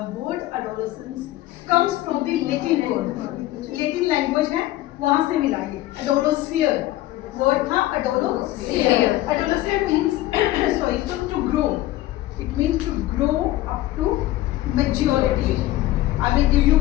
word adolescence comes from the Latin word, Latin language है, वहां से मिला ये एडोलोसियर वर्ड था, adolescere. Adolescere means sorry to grow, it means to grow up to maturity. I will give you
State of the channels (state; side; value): quieter; right; 16.1 dB